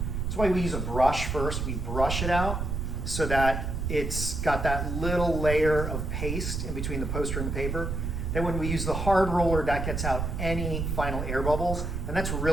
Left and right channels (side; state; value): right; noise; rumble, 2 dB below the sound